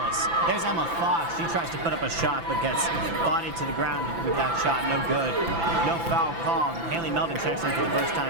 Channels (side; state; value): left; late; 5.9 ms